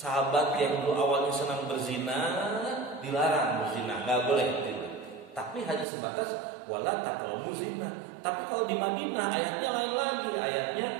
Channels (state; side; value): drops out; left; at 5.9 s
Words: yang dulu awalnya senang berzina dilarang berzina, nggak boleh gitu. Tapi hanya sebatas wala taqrabu zina. Tapi kalau di Madinah ayatnya lain lagi.